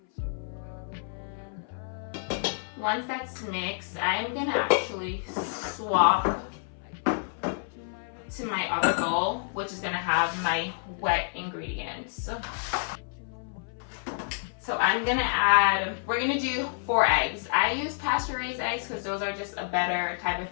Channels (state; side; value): silent; right; 57 dB below the other